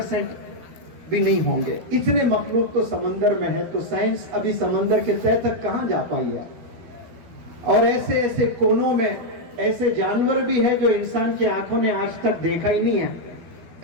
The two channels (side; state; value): left; late; 12 ms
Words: بھی نہیں ہوں گے. اتنے مخلوق تو سمندر میں ہے، تو سائنس ابھی سمندر کے تہہ تک کہاں جا پائی ہے. اور ایسے ایسے کونوں میں ایسے جانور بھی ہے جو انسان کی آنکھوں نے آج تک دیکھا ہی نہیں ہے،